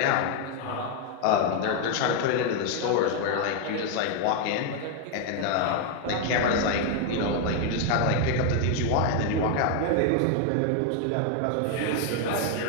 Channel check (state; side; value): different; both; correlation 0.01